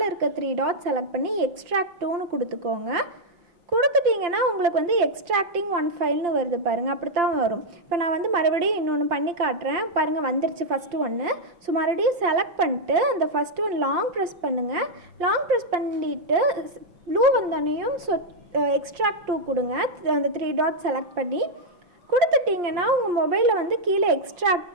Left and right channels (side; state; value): left; late; 5.7 ms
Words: இருக்க 3 டாட் செலக்ட் பண்ணி எக்ஸ்ட்ராக்ட் டூன்னு கொடுத்துக்கோங்க. கொடுத்துட்டிங்கன்னா உங்களுக்கு வந்து எக்ஸ்ட்ராக்டிங் 1 ஃபைல்னு வருது பாருங்கள், அப்படி தான் வரும். இப்போ நான் வந்து மறுபடியும் இன்னொன்று பண்ணி காட்டுறேன் பாருங்கள், வந்துருச்சு ஃபஸ்ட்டு ஒன்று. ஸோ மறுபடியும் செலக்ட் பண்ணிட்டு அந்த ஃபஸ்ட்டு ஒன் லாங் ப்ரெஸ் பண்ணுங்கள். லாங் ப்ரெஸ் பண்ணிவிட்டு ப்ளூ வந்தோடனையும் ஸோ எக்ஸ்ட்ராக்ட் 2 கொடுங்க. அந்த 3 டாட் செலக்ட் பண்ணி கொடுத்துட்டிங்கன்னா உங்கள் மொபைலில் வந்து கீழே